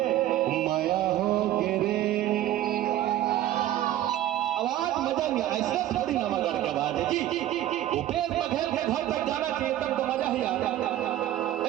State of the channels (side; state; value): left; quieter; 13.3 dB